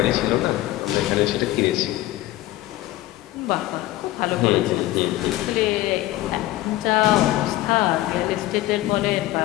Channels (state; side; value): quieter; right; 16.3 dB